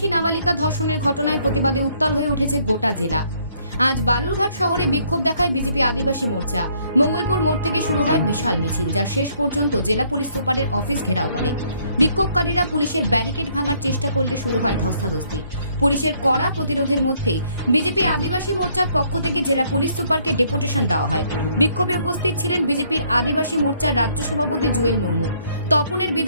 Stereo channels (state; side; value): inverted; both; correlation -0.66